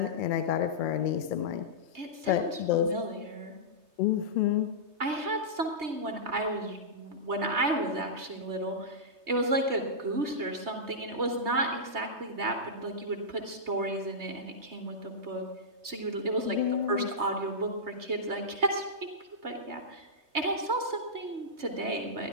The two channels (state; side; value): late; left; 3.2 ms